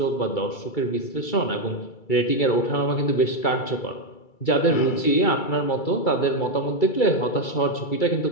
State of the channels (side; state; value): right; late; 2.3 ms